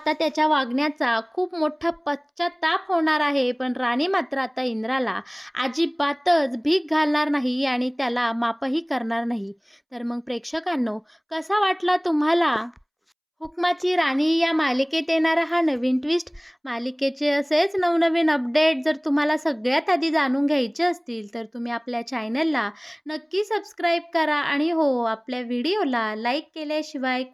त्याच्या वागण्याचा खूप मोठा पश्चात्ताप होणार आहे. पण राणी मात्र आता इंद्राला अजिबातच भीक घालणार नाही आणि त्याला माफही करणार नाही. तर मग प्रेक्षकांनो, कसा वाटला तुम्हाला हुकमाची राणी या मालिकेत येणारा हा नवीन ट्विस्ट, मालिकेचे असेच नवनवीन अपडेट जर तुम्हाला सगळ्यात आधी जाणून घ्यायचे असतील, तर तुम्ही आपल्या चॅनलला नक्की सबस्क्राईब करा आणि हो, आपल्या व्हिडिओला लाईक केल्याशिवाय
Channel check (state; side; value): identical; both; correlation 1.00